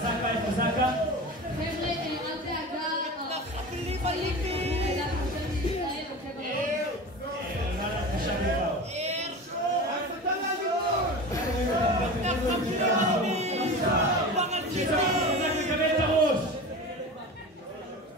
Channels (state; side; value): normal; both; correlation 0.31